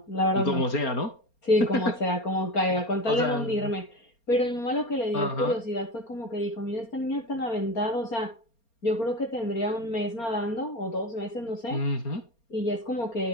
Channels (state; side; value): late; right; 4.3 ms